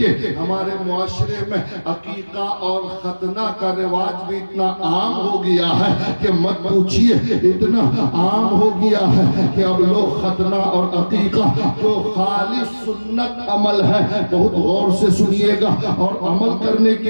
ہمارے معاشرے میں عقیقہ اور ختنہ کا رواج بھی اتنا عام ہو گیا ہے کہ مت پوچھئے، اتنا عام ہو گیا ہے کہ اب لوگ ختنہ اور عقیقہ جو خالص سنت عمل ہے، بہت غور سے سنیے گا اور عمل کرنے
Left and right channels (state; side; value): inverted; both; correlation -1.00